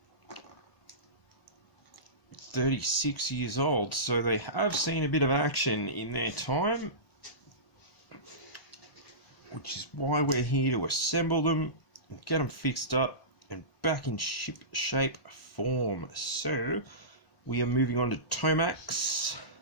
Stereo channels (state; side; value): late; right; 1.1 ms